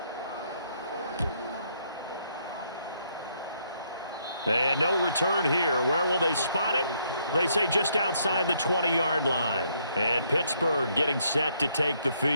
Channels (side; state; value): both; inverted; correlation -0.71